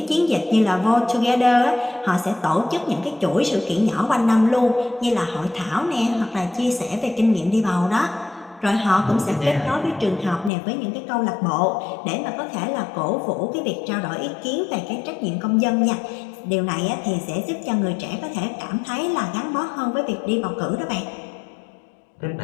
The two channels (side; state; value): right; drops out; at 10.5 s